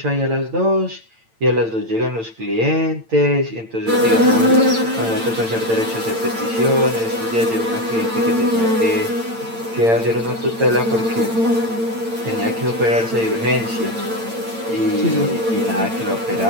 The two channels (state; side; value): late; left; 8.9 ms